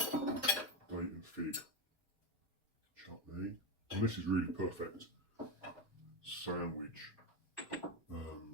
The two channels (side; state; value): both; normal; correlation 0.12